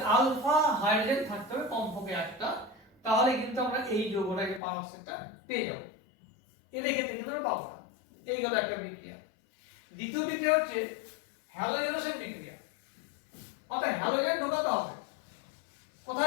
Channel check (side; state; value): right; drops out; at 4.6 s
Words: আলফা হাইড্রোজেন থাকতে হবে কমপক্ষে একটা, তাহলে কিন্তু আমরা এই যৌগটাকে পারঅক্সাইডটা পেয়ে যাব। এদের ক্ষেত্রে কিন্তু আমরা পাবো না। এই গেল একটা বিক্রিয়া। দ্বিতীয় বিক্রিয়া হচ্ছে হ্যালোজেনেশন বিক্রিয়া। অর্থাৎ হ্যালোজেন ঢোকাতে হবে।